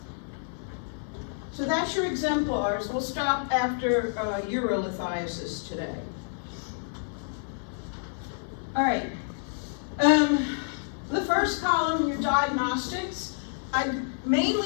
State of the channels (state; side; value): silent; right; 59 dB below the other